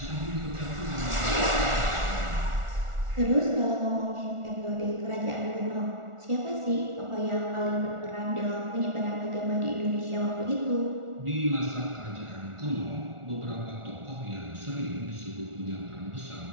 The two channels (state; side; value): late; left; 1.4 ms